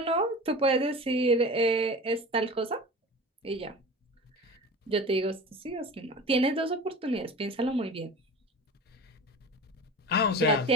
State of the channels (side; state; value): both; normal; correlation 0.34